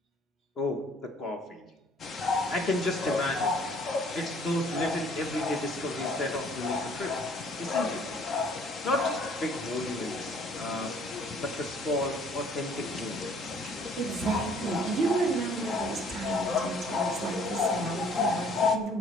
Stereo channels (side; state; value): both; normal; correlation 0.58